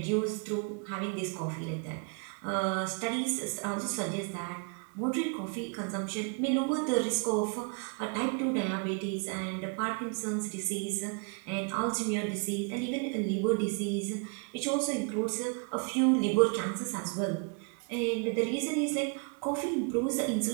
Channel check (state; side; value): quieter; left; 37.6 dB